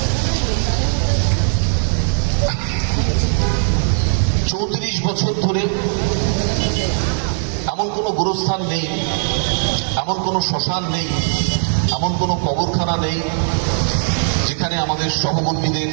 34 বছর ধরে এমন কোনো গোরস্থান নেই, এমন কোনো শ্মশান নেই, এমন কোনো কবরখানা নেই যেখানে আমাদের সহকর্মীদের,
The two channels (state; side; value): silent; left; digital silence